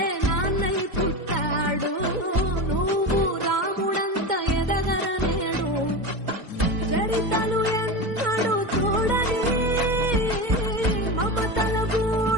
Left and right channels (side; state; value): left; late; 2.1 ms